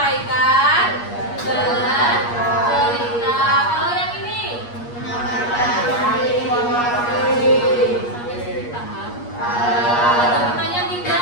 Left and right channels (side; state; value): right; late; 8.4 ms